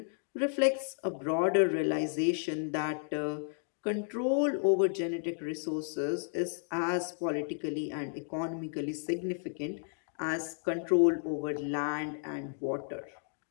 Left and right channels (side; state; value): right; silent; digital silence